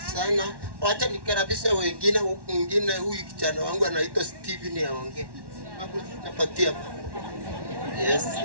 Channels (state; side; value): late; left; 1.1 ms